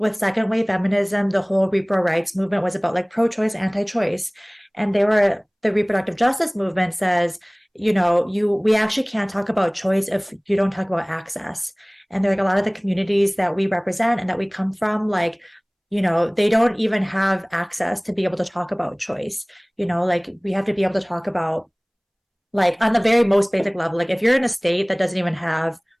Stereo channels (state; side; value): identical; both; correlation 1.00